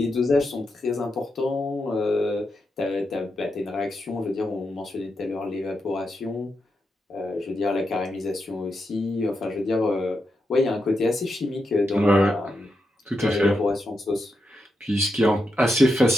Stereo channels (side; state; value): both; normal; correlation 0.85